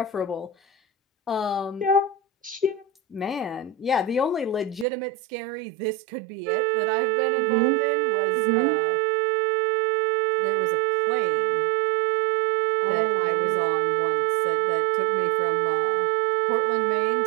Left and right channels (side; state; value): left; drops out; at 4.9 s